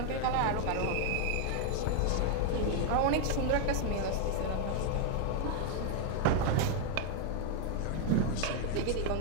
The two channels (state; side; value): different; both; correlation 0.00